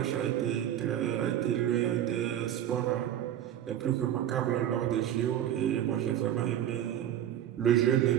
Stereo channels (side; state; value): left; quieter; 11.0 dB